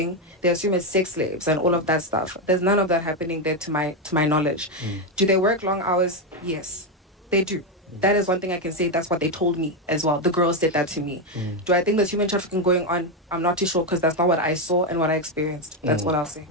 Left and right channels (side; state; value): both; normal; correlation 0.07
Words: they assume it's sex slaves and all of that stuff. There's none of that happening there to my knowledge. Do they work long hours? Yes, they do. That is one thing I can say. That's what they told me as well. The girls said that to me. Do I think there's human trafficking going on? I'm not too sure because that's not what I saw and what I experienced. That's what I'll say.